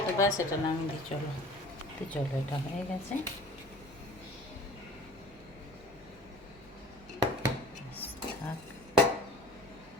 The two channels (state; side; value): normal; both; correlation 0.44